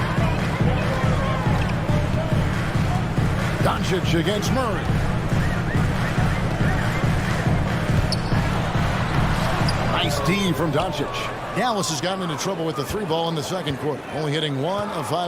Doncic against Murray. Nice D from Doncic. Dallas has gotten into trouble with the 3-ball in the second quarter, only hitting 1 of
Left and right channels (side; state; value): both; identical; correlation 1.00